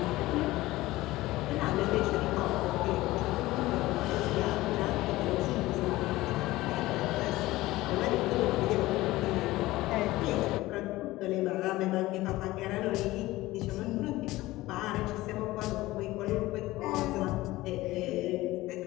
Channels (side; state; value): right; quieter; 18.1 dB